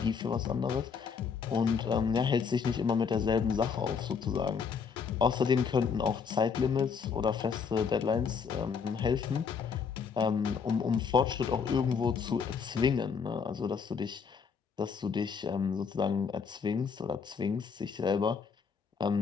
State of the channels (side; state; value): right; quieter; 6.1 dB